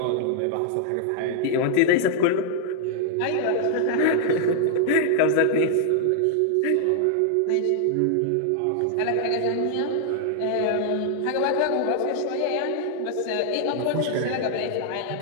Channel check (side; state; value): both; different; correlation -0.01